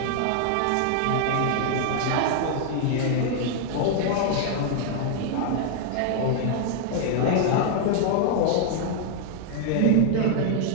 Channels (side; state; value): both; different; correlation 0.00